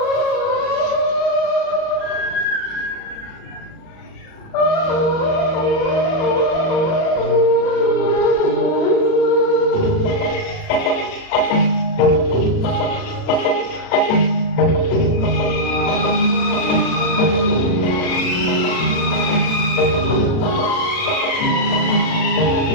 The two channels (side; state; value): right; late; 37 ms